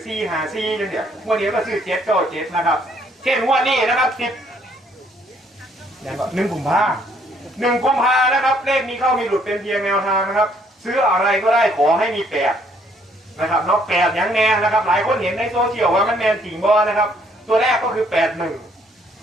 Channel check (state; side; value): normal; both; correlation 0.66